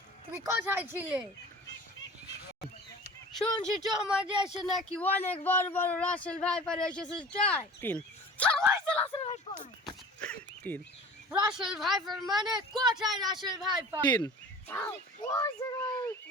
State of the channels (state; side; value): normal; both; correlation 0.40